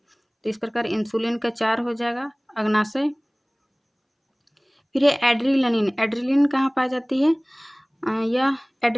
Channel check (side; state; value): both; identical; correlation 1.00